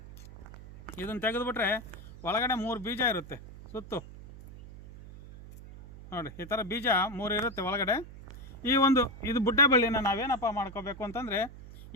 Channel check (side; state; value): right; noise; hum, 15 dB below the sound